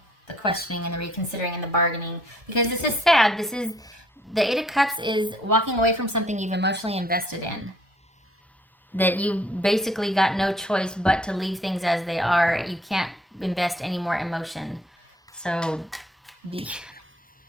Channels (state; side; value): normal; both; correlation 0.63